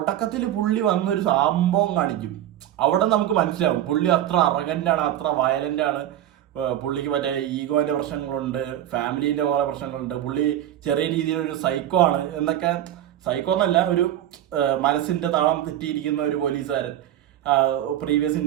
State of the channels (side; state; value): left; quieter; 12.0 dB